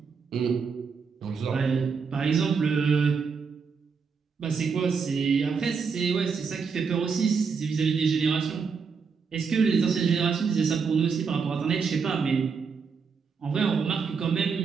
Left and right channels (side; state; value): left; quieter; 5.6 dB